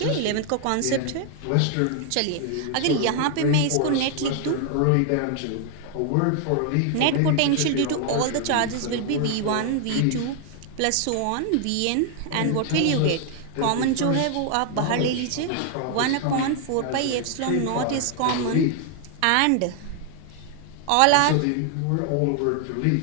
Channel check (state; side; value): different; both; correlation 0.00